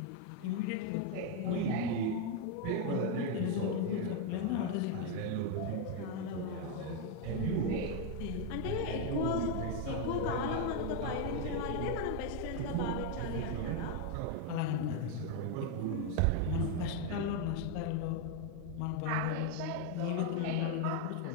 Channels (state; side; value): different; both; correlation 0.01